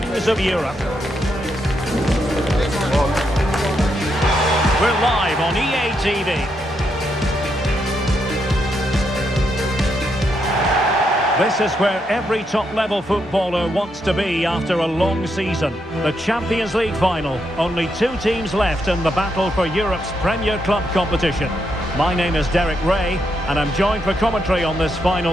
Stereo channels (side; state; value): both; normal; correlation 0.80